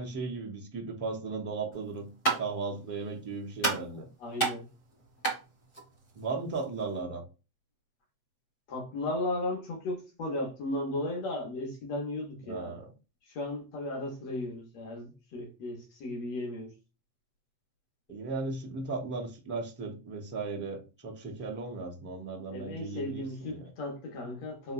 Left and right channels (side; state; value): right; late; 7.5 ms